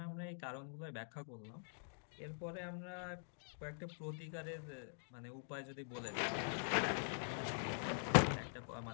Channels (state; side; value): silent; right; digital silence